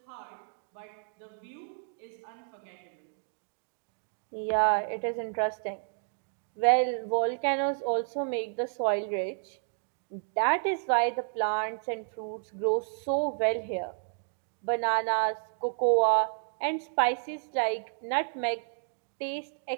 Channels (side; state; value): left; silent; digital silence